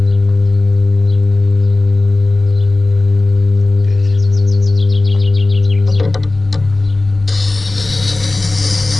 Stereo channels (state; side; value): quieter; right; 3.0 dB